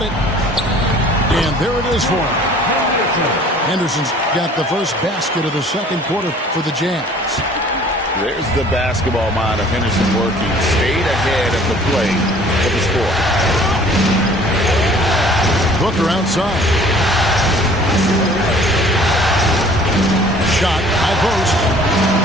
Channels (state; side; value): normal; both; correlation 0.52